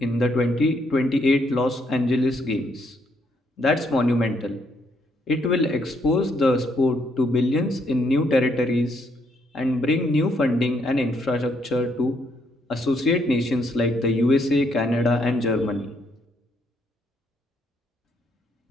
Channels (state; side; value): normal; both; correlation 0.73